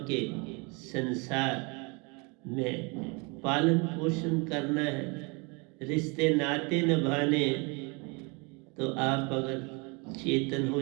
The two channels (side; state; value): left; quieter; 30.4 dB